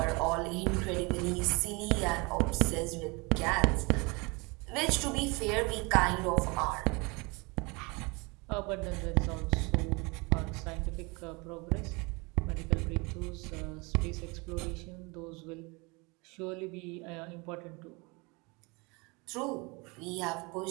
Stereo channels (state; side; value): quieter; left; 27.6 dB